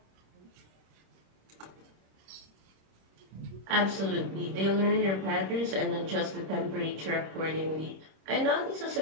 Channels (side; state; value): left; late; 26 ms